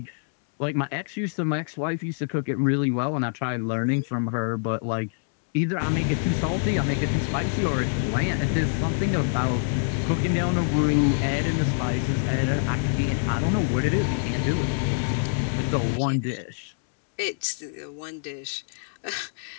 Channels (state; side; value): silent; right; digital silence